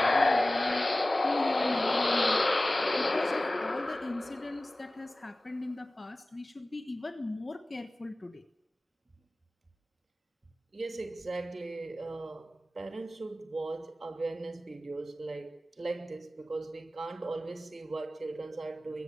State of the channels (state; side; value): normal; both; correlation 0.97